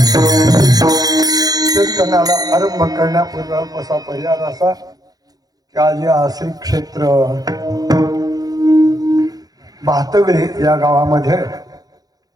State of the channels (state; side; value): late; left; 0.18 ms